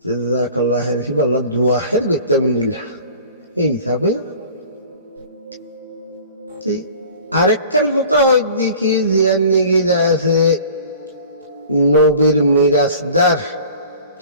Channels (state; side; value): inverted; both; correlation -0.45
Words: জাযাকাল্লাহ খাইর ফি আল্লাহ দোয়া খাইর গইতা মিনিল্লাহ এই হিসাবে আরেকটার কথা হয় দেখি জিয়ান নিগি যা আছে নবীর মিরাজদার